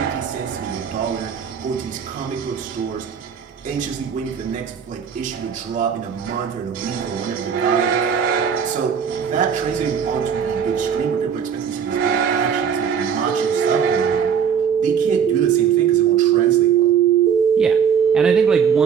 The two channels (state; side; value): quieter; left; 7.4 dB